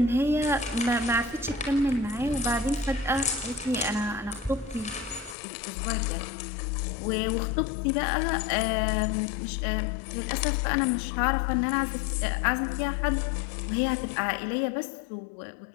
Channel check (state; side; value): drops out; right; at 5.4 s